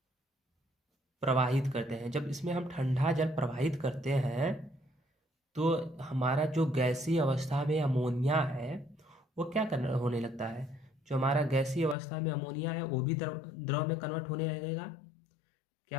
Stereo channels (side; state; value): right; drops out; at 12.0 s